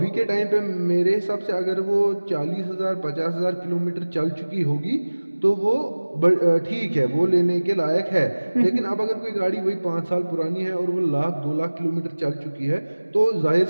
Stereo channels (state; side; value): inverted; both; correlation -1.00